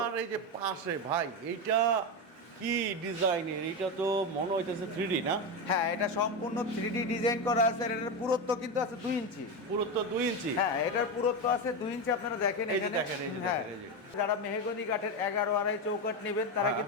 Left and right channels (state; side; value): normal; both; correlation 0.14